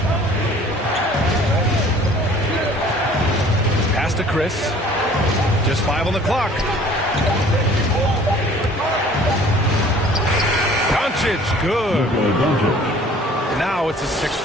Pass to Chris. Just 5 on the clock. Doncic, good. Now it's a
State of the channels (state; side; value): normal; both; correlation 0.52